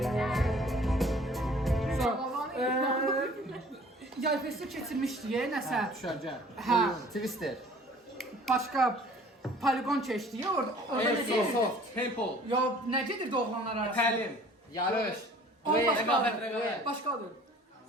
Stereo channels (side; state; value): both; normal; correlation 0.51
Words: Yay festi keçirmişdi nəsə. Düşərgə. Hə. Twister. Başqa poligon keçdi orada. Airsoft. Paintball. Ya nə gedirdi oğlanlar arasında? Təlim. Yarış. Başqadır. Başqadır.